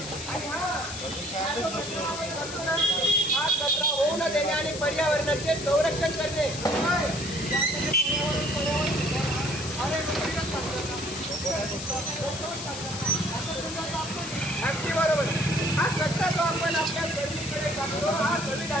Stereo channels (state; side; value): noise; left; hiss, 8 dB below the sound